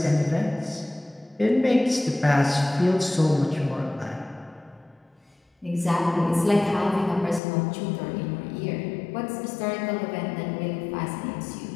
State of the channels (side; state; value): right; drops out; at 7.4 s